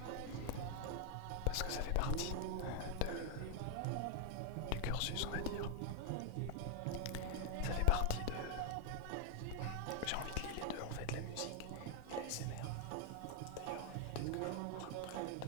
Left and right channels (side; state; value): both; different; correlation 0.00